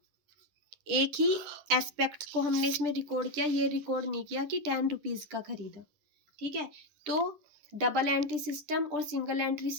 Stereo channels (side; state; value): left; late; 10 ms